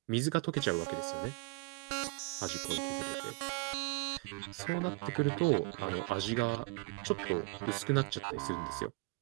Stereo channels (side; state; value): left; quieter; 29.6 dB